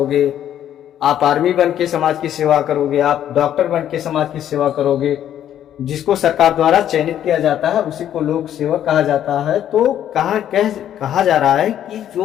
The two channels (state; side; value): quieter; right; 10.7 dB